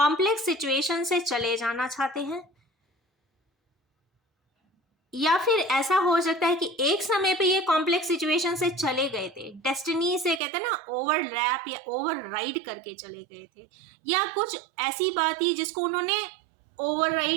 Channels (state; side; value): drops out; left; at 10.4 s